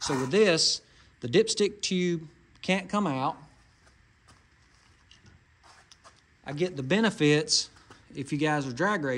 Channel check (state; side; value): identical; both; correlation 1.00